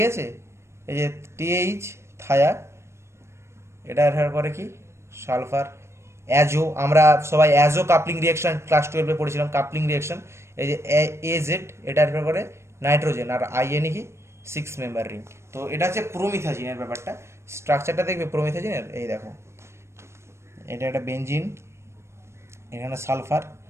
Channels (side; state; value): left; late; 0.13 ms